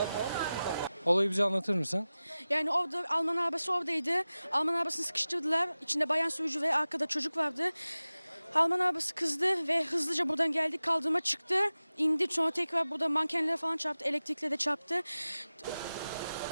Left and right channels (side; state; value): both; inverted; correlation -0.96